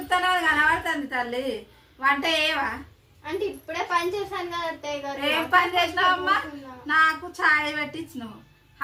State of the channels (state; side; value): identical; both; correlation 1.00